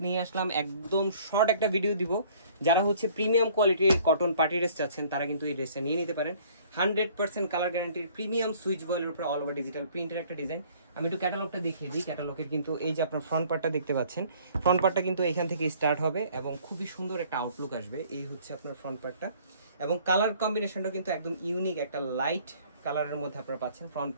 নিয়ে আসলাম। একদম শর্ট একটা ভিডিও দিব। যারা হচ্ছে প্রিমিয়াম কোয়ালিটির কটন পার্টি ড্রেস চাচ্ছেন তারা কিন্তু এই ড্রেসটা নিয়ে নিতে পারেন। 100% কালার গ্যারান্টির প্রিমিয়াম সুইচ বয়েলের উপর অল ওভার ডিজিটাল প্রিন্টের একটা ডিজাইন। আমি একটু ক্যাটালগটা দেখিয়ে দিই। ক্যাটালগের কিন্তু এই যে আপনার ফ্রন্ট পার্টটা দেখতে পাচ্ছেন, ফ্রন্ট পার্টটা কিন্তু এখান থেকে স্টার্ট হবে এবং খুবই সুন্দর একটা আউটলুক আসবে। এই হচ্ছে আপনার ফ্রন্ট পার্টটা এবং কালার কম্বিনেশনটা কিন্তু একদম ইউনিক একটা লাইট কালারের মধ্যে আপনারা পাচ্ছেন। ফ্রন্ট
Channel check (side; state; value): both; inverted; correlation -0.56